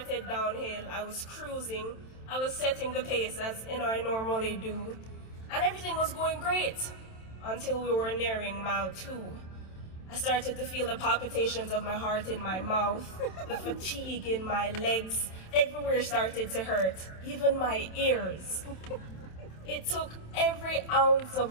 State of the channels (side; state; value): right; late; 27 ms